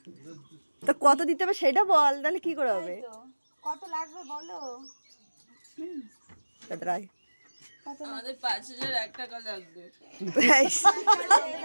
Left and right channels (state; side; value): inverted; both; correlation -1.00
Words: তো কত দিতে হবে সেটা বল, তাহলে কি করে হবে? কত লাগবে বলো? আমাদের 5001 টাকা লাগবে।